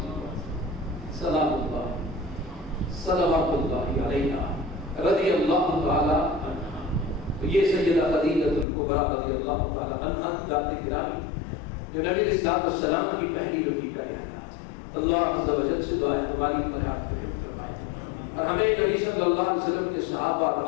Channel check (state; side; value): drops out; right; at 8.7 s